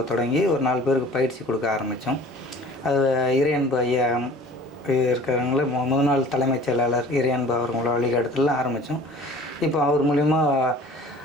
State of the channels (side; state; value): both; normal; correlation 0.46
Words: தொடங்கி ஒரு 4 பேருக்கு பயிற்சி கொடுக்க ஆரம்பித்தோம். அது இறையன்பு ஐயா இருக்கிறவங்கள முதல் நாள் தலைமைச் செயலாளர் இறையன்பு அவங்களோட வழிகாட்டுதல் ஆரம்பித்தோம். இப்போ அவர் மூலிமா